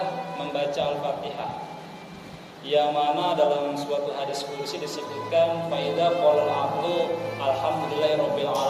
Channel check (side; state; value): both; identical; correlation 1.00